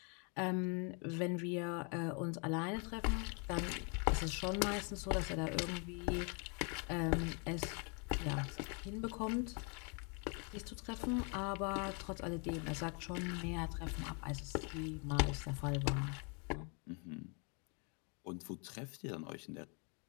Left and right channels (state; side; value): quieter; right; 36.0 dB